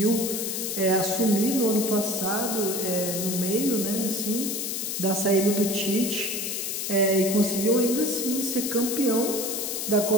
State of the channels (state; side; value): noise; left; hiss, 3 dB below the sound